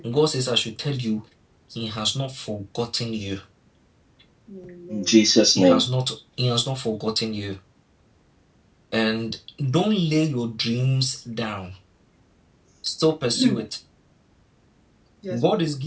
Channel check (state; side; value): identical; both; correlation 1.00